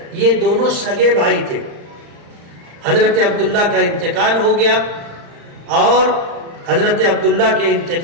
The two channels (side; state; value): left; late; 35 ms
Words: یہ دونوں سگے بھائی تھے. حضرت عبداللہ کا انتقال ہو گیا اور حضرت عبداللہ کے